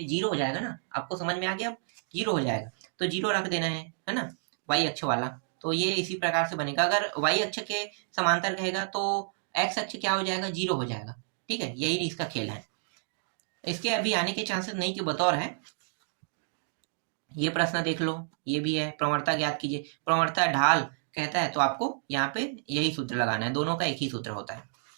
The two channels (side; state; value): left; silent; digital silence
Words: 0 हो जाएगा ना। आपको समझ में आ गया, अब 0 हो जाएगा तो 0 रख देना है ना, वाई अक्ष वाला। तो ये इसी प्रकार से बनेगा। अगर वाई अक्ष के समांतर कहेगा तो एक्स अक्ष क्या हो जाएगा, 0 हो जाएगा। ठीक है, यही इसका खेल है। इसके अभी आने के चांसेस नहीं के बतौर है। ये प्रश्न देख लो, ये भी है, प्रवणता ज्ञात कीजिए। प्रवणता ढाल कहता है तो आपको यहाँ पे यही सूत्र लगाना है, दोनों का एक ही सूत्र होता है